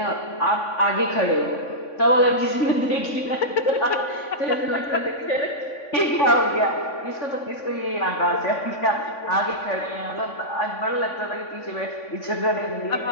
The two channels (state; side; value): late; right; 3.5 ms